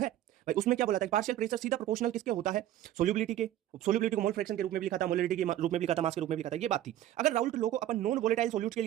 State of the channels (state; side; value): quieter; left; 12.8 dB